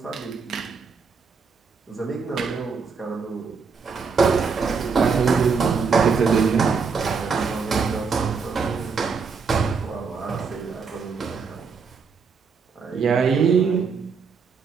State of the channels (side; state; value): left; quieter; 5.3 dB